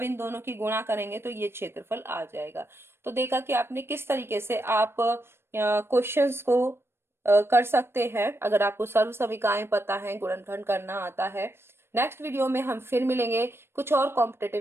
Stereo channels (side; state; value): left; late; 0.12 ms